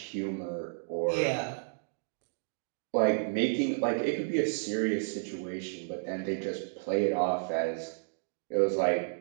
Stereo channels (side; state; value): left; silent; digital silence